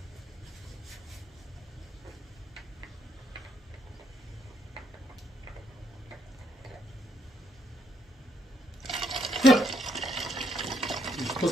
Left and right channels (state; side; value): normal; both; correlation 0.74